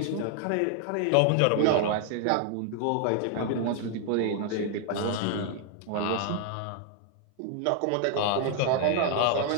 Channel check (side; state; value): both; different; correlation 0.00